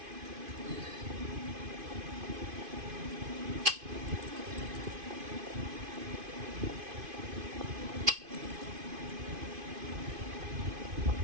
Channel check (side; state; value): left; late; 2.5 ms